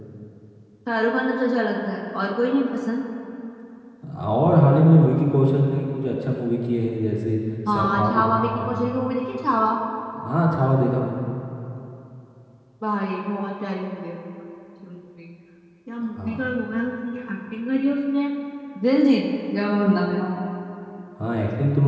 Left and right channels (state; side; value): identical; both; correlation 1.00